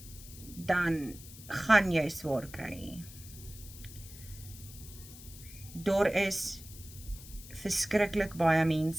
dan gaan jy swaar kry. Daar is verskriklik baie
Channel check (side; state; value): left; noise; hiss, 16 dB below the sound